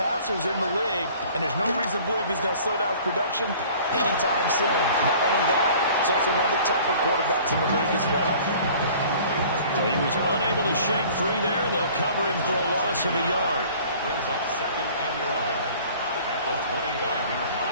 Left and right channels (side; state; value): both; inverted; correlation -0.49